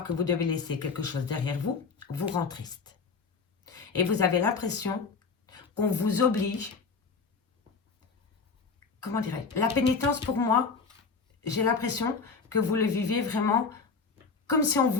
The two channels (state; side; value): quieter; right; 4.8 dB